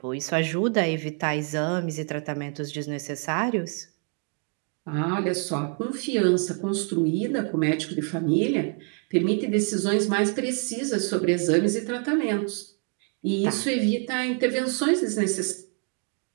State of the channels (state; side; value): quieter; left; 38.0 dB